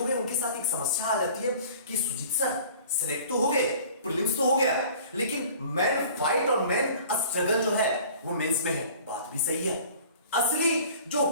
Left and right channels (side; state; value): both; inverted; correlation -0.47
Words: गए उनके साथ एक समस्या आ जाती है कि सुजीत सर सिलेक्ट तो हो गए, प्रीलिम्स तो हो गया, लेकिन मैन फाइट और मैन स्ट्रगल जो है वो मेंस में है। बात भी सही है। असली जो